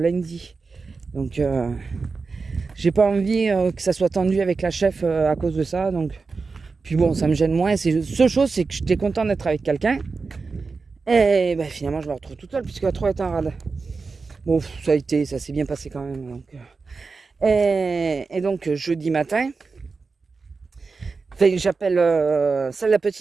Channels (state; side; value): quieter; left; 4.4 dB